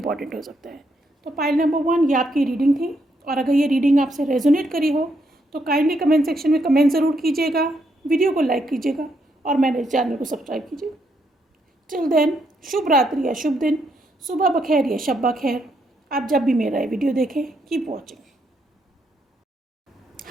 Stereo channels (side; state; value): both; normal; correlation 0.77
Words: हो सकता है। तो पाइल नंबर 1 ये आपकी रीडिंग थी, और अगर ये रीडिंग आपसे रेजोनेट करी हो तो काइंडली कमेंट सेक्शन में कमेंट ज़रूर कीजिएगा, वीडियो को लाइक कीजिएगा और मेरे चैनल को सब्सक्राइब कीजिएगा। टिल देन, शुभ रात्रि या शुभ दिन, सुबह बखैर या शब बखैर। आप जब भी मेरा ये वीडियो देखें, keep watching.